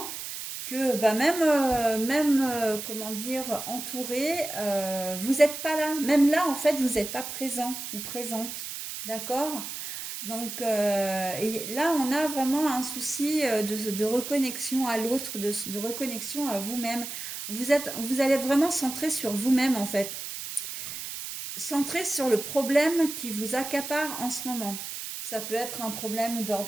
que même comment dire, entouré, vous n'êtes pas là. Même là, en fait, vous n'êtes pas présent ou présente. D'accord? Donc et là, on a vraiment un souci de reconnexion à l'autre, de reconnexion à vous-même. Vous allez être vraiment centré sur vous-même, en fait, centré sur le problème qui vous accapare en ce moment. Ça peut être un problème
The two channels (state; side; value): noise; right; hiss, 7 dB below the sound